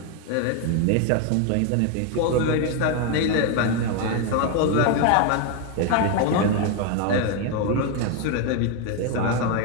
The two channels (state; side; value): different; both; correlation 0.01